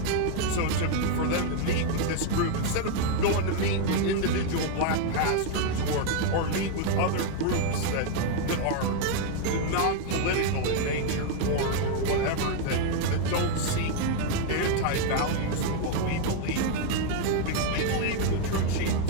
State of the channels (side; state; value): both; different; correlation 0.00